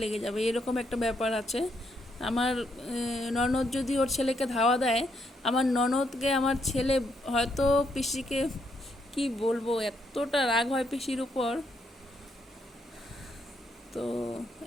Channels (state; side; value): normal; both; correlation 0.76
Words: লেগে যাবে, এরকম একটা ব্যাপার আছে। আমার ননদ যদি ওর ছেলেকে ধাওয়া দেয়, আমার ননদকে আমার ছেলে হয়তো পিসিকে কি বলবো, এতটা রাগ হয় পিসির উপর। তো